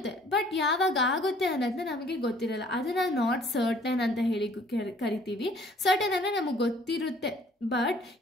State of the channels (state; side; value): normal; both; correlation 0.57